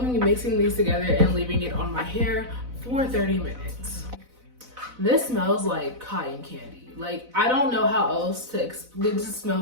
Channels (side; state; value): left; late; 4.0 ms